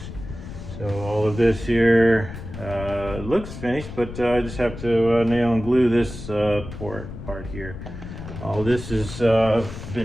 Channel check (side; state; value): left; noise; rumble, 11 dB below the sound